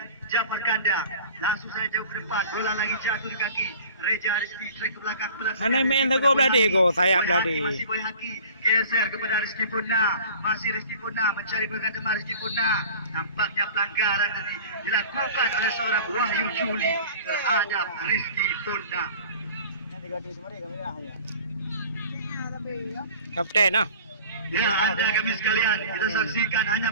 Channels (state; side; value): inverted; both; correlation -0.44